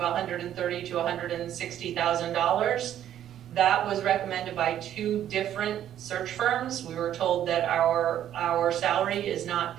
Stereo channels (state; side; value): quieter; left; 11.0 dB